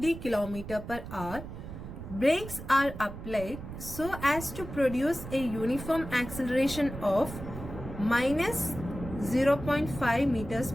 km per hour. Brakes are applied so as to produce a uniform acceleration of minus 0.5 meters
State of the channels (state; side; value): noise; right; rumble, 10 dB below the sound